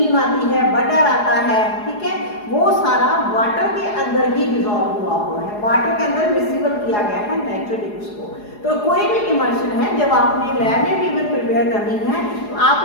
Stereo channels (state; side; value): late; right; 4.8 ms